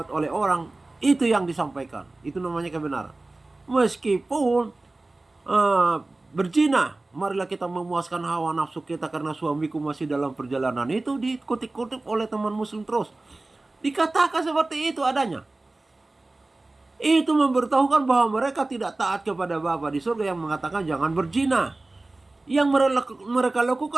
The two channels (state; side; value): quieter; left; 3.0 dB